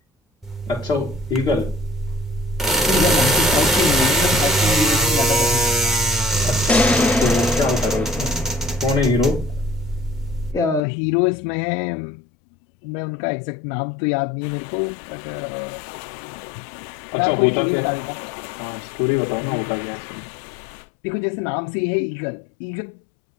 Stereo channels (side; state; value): right; drops out; at 10.8 s